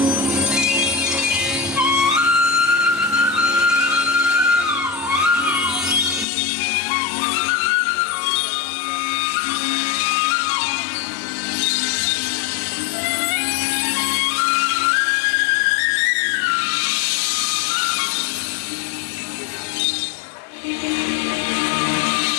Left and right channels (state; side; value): drops out; right; at 6.2 s